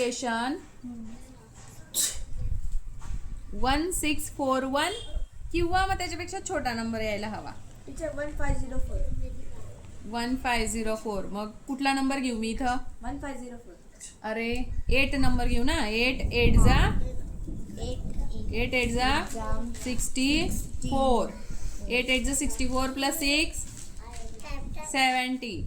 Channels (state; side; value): identical; both; correlation 1.00